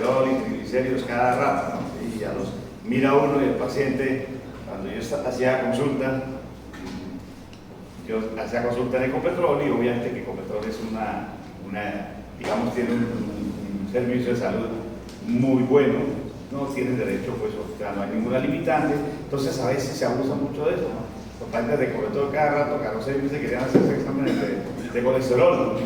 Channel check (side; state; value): both; identical; correlation 1.00